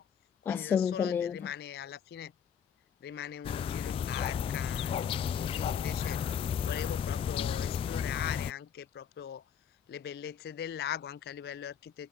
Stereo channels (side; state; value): right; quieter; 7.9 dB